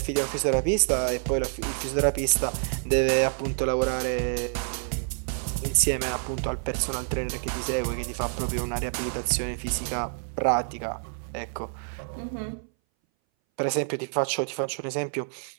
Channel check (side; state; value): left; silent; 59 dB below the other